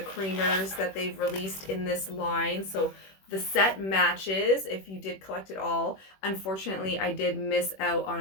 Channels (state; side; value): late; right; 21 ms